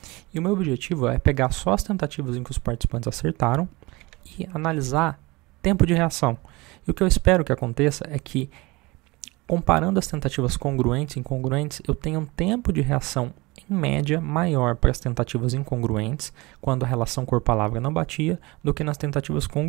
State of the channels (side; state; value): left; quieter; 23.2 dB